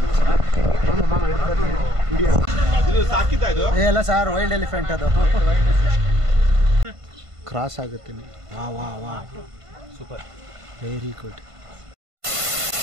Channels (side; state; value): left; late; 1.5 ms